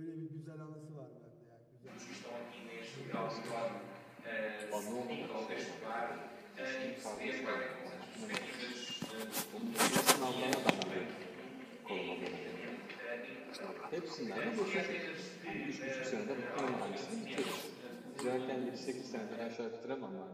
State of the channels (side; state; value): both; identical; correlation 1.00